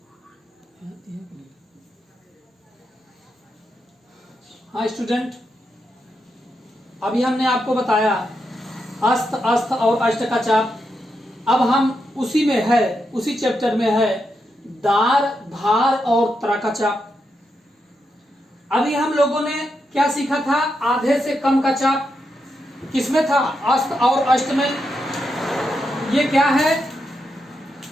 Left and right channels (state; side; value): normal; both; correlation 0.84